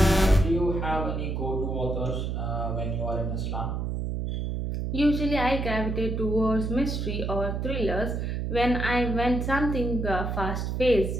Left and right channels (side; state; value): right; noise; hum, 2 dB below the sound